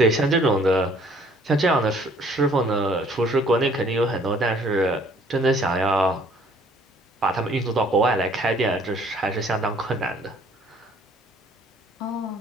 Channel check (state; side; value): normal; both; correlation 0.59